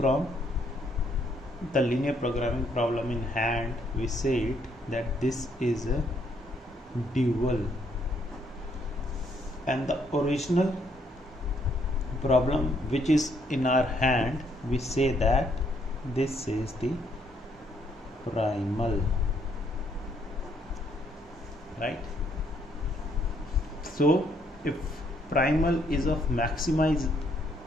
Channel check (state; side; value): normal; both; correlation 0.70